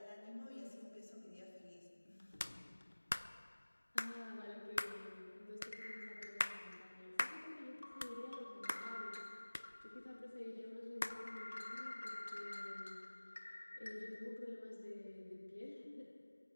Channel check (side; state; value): both; inverted; correlation -1.00